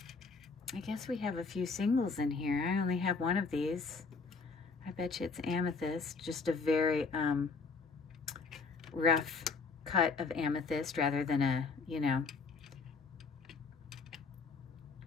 I guess we have a few singles in here. I only have one of these. I bet you it's amethyst. Just a very rough cut of amethyst rather than a, you know,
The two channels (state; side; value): quieter; right; 4.5 dB